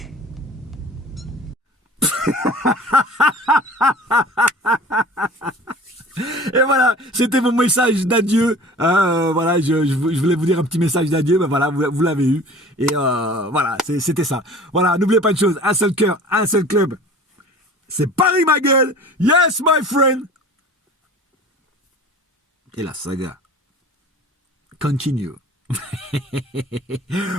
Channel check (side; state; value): both; normal; correlation 0.43